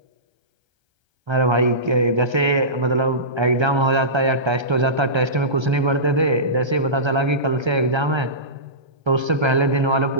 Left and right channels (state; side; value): late; left; 1.3 ms